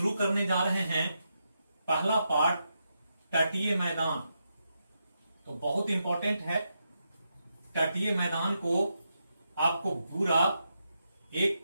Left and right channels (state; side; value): inverted; both; correlation -0.84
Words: करने जा रहे हैं पहला पार्ट तटीय मैदान। तो बहुत इंपॉर्टेंट है, तटीय मैदान को आपको पूरा एक